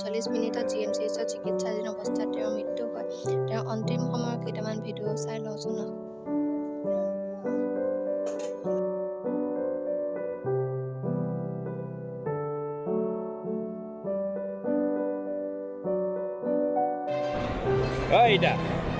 GMCHত চিকিৎসাধীন অৱস্থাত তেওঁৰ মৃত্যু হয়। তেওঁৰ অন্তিম সময়ৰ কেইটামান ভিডিঅ' চাই লওঁচোন।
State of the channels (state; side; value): identical; both; correlation 1.00